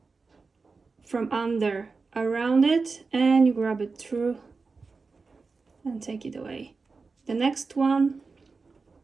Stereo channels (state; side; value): quieter; left; 4.3 dB